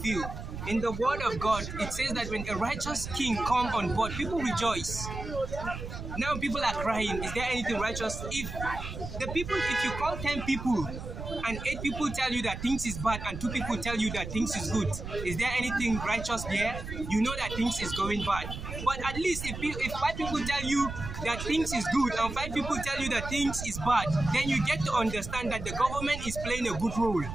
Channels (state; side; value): noise; right; rumble, 8 dB below the sound